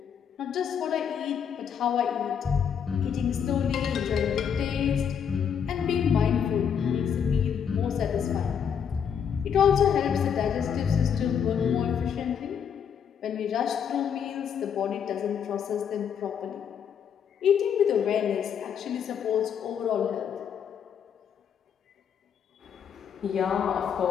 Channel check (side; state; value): right; quieter; 7.7 dB